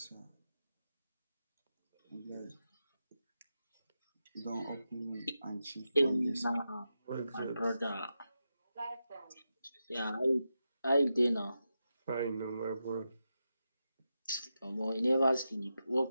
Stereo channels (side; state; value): both; inverted; correlation -0.89